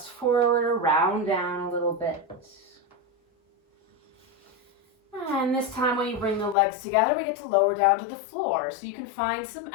forward or round down a little bit. And this time when you bring the legs together, we get to lower down to the floor. So you can find some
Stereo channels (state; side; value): drops out; right; at 6.6 s